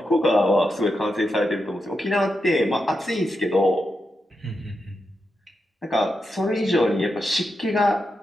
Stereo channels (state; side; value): normal; both; correlation 0.87